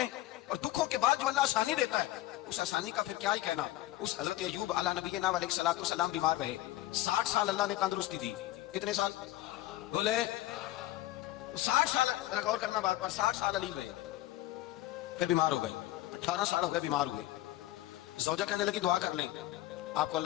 ہیں, اور دکھوں کے بعد جو اللہ آسانی دیتا ہے اس آسانی کا پھر کیا ہی کہنا. اس حضرت ایوب علی نبینا علیہ الصلوۃ والسلام بیمار رہے, 60 سال اللہ نے تندرستی دی. کتنے سال بولے؟ 60 سال. غور کرنا بات پر, 60 سال علی رہے, پھر بیمار ہو گئے. 18 سال ہو گئے بیمار ہوئے. زوجہ کہنے لگی دعا کر لیں آپ کو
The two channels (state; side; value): quieter; right; 16.0 dB